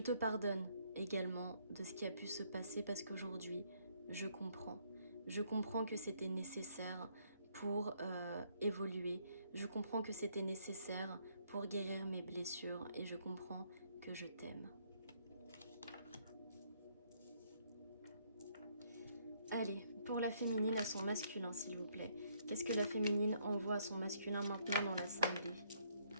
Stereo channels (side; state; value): both; inverted; correlation -0.68